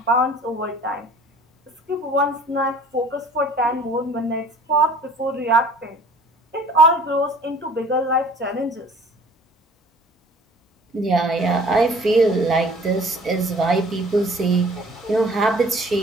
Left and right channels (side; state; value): both; normal; correlation 0.50